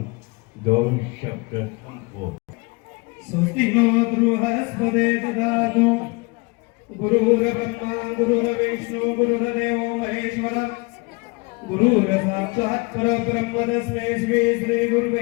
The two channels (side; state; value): right; quieter; 27.3 dB